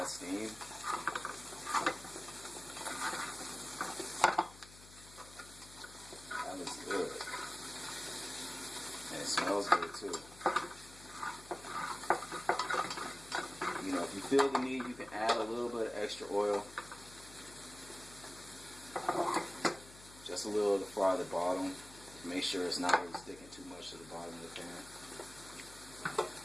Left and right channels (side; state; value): left; noise; hum, 19 dB below the sound